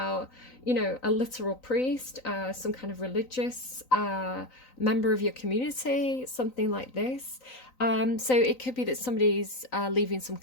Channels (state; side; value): late; right; 3.9 ms